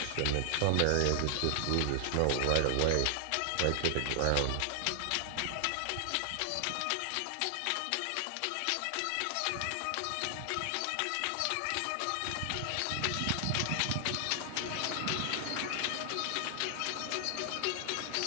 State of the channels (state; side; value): different; both; correlation 0.00